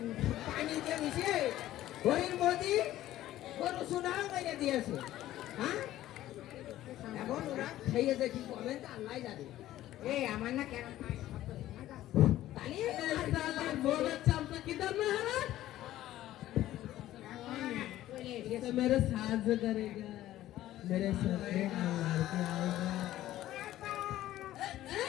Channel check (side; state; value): right; quieter; 14.1 dB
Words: পানি দিয়ে মিশিয়ে হরিণ মোদি গরু সুনাও মেরে দিয়েছে, হ্যাঁ? এখন ওরা খেয়েছে কি করবেন তা আল্লাহ জানে। এই আমার না কেন मेरे साथ करेगा मेरे सपने